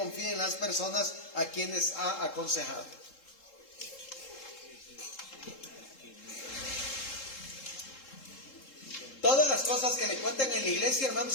las personas a quienes ha aconsejado. Todas las cosas que le cuenten en la iglesia,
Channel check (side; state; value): right; late; 3.7 ms